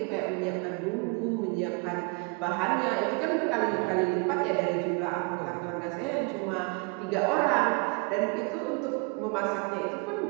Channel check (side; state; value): left; quieter; 32.4 dB